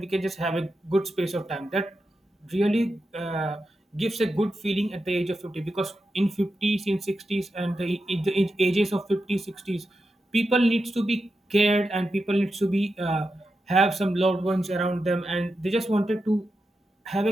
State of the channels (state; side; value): normal; both; correlation 0.89